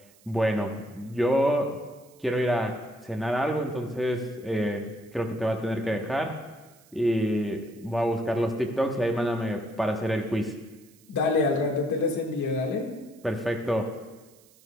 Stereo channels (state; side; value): noise; right; hiss, 28 dB below the sound